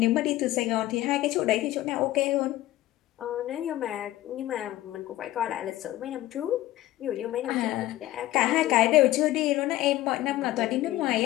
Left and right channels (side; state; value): right; quieter; 15.6 dB